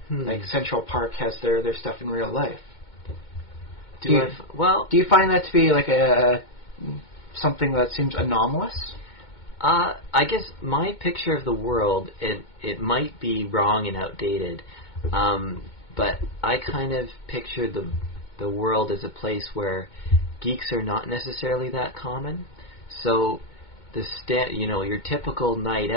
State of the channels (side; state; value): right; late; 2.2 ms